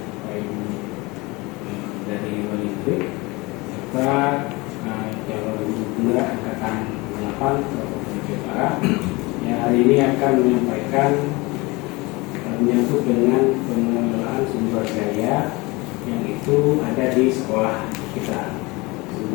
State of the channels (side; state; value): right; quieter; 24.1 dB